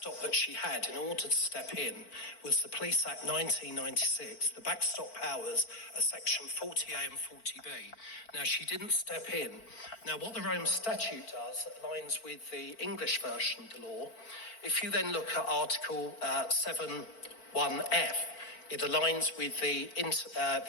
that she had in order to step in was the Police Act 1996. The backstop powers are section 40A and 40B. Now, she didn't step in. Now, what the Rome Statute does that aligns with the English version of the law, if you then look at Article 7.1f, It aligns with the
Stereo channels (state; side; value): late; right; 4.5 ms